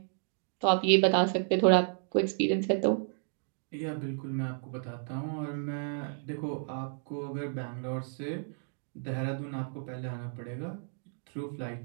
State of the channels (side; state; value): left; silent; digital silence